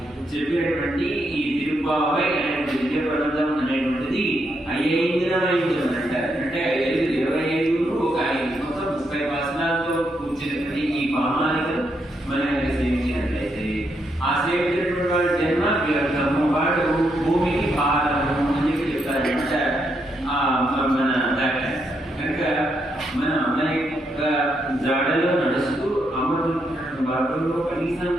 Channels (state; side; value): normal; both; correlation 0.79